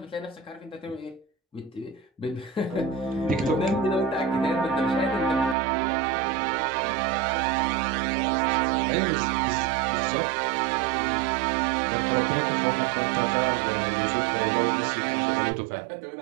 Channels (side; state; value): left; drops out; at 5.6 s